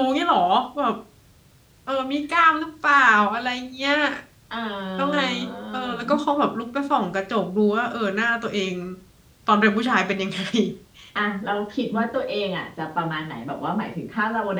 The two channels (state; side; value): identical; both; correlation 1.00